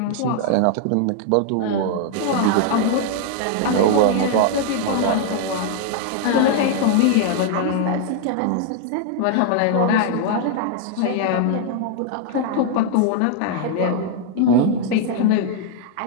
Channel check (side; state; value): both; different; correlation 0.00